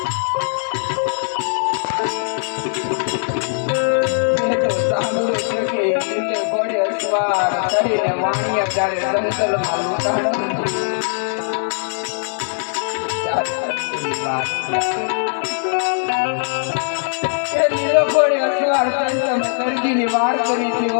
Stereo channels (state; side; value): silent; right; digital silence